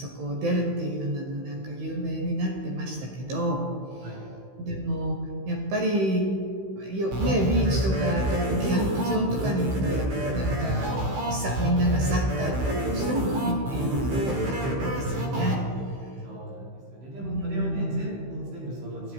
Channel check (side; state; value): left; late; 15 ms